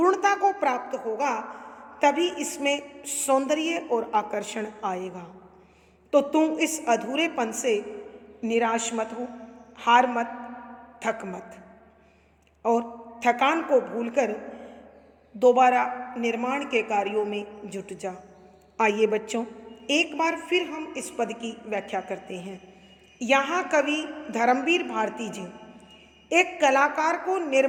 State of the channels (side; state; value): both; identical; correlation 1.00